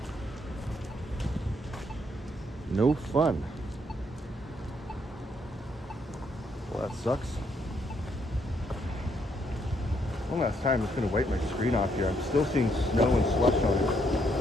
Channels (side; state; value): both; normal; correlation 0.73